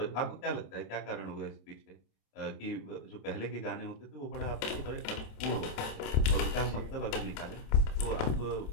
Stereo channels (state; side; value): late; right; 27 ms